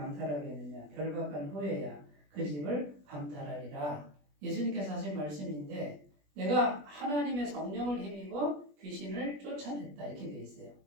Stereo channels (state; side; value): late; left; 20 ms